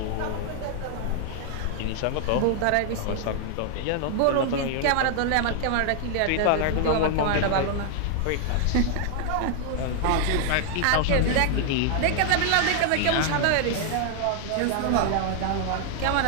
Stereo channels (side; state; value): both; different; correlation 0.00